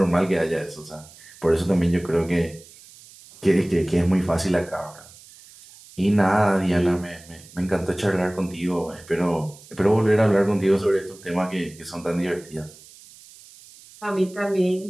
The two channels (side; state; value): right; noise; hiss, 22 dB below the sound